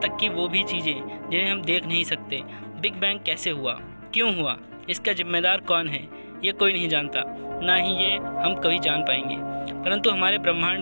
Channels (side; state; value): both; inverted; correlation -1.00